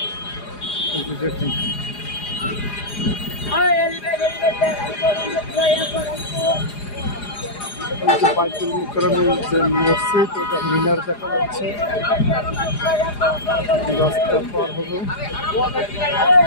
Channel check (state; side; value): late; right; 4.9 ms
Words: দেখুন বাইতুল মোকাররমের যে মসজিদ ওটা মিনার দেখা যাচ্ছে। রাস্তা পার হলো